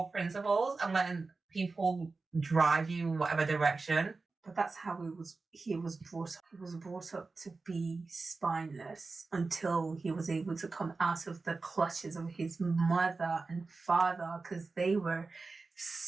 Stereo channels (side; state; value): left; quieter; 3.9 dB